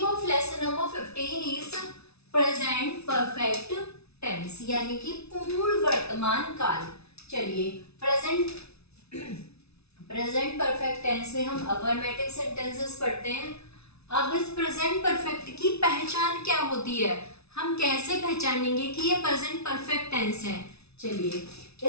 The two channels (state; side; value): late; right; 0.80 ms